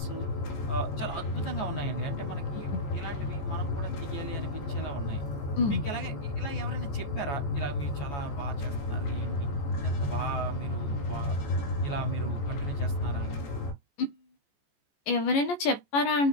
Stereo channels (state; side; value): late; right; 14 ms